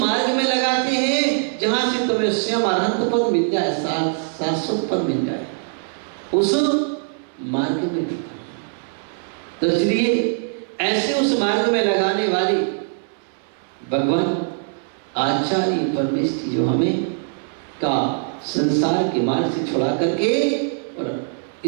में लगाते हैं जहां से तुम्हें स्वयं अनंत पद मिल जाए, शाश्वत पद मिल जाए, उस मार्ग में लगाते हैं। तो इसलिए ऐसे उस मार्ग में लगाने वाले भगवान आचार्य परमेश्वर जो हमें का संसार के मार्ग से छुड़ा करके और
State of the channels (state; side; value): silent; left; 64 dB below the other